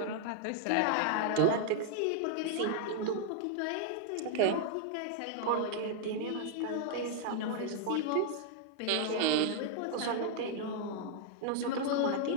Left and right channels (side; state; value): both; different; correlation -0.01